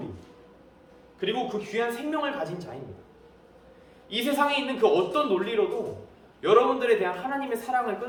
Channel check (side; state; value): both; identical; correlation 1.00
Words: 그리고 그 귀한 생명을 가진 자입니다. 이 세상에 있는 그 어떤 논리로도 여러분들에 대한 하나님의 사랑을